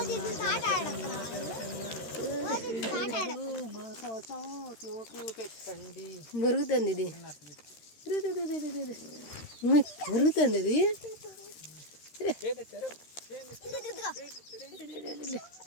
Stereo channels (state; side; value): late; right; 13 ms